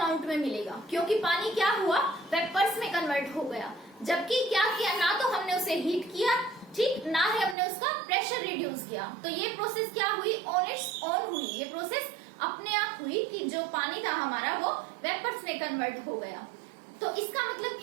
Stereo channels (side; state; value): left; drops out; at 7.6 s